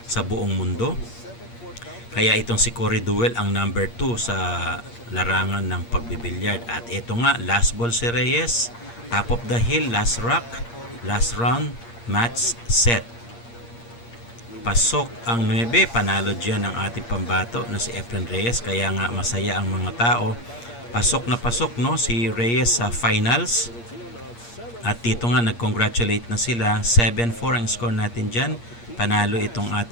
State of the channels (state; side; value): late; right; 8.5 ms